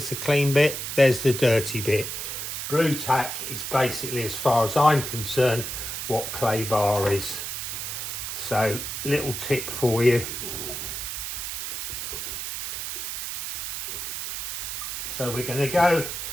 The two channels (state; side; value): noise; right; hiss, 5 dB below the sound